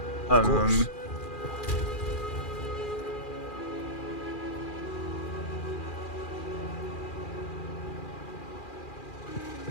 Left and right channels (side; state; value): right; late; 2.4 ms